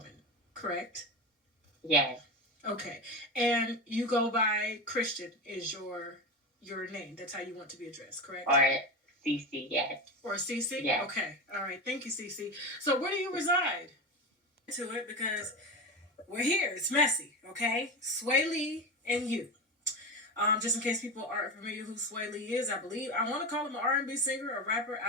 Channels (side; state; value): both; normal; correlation 0.21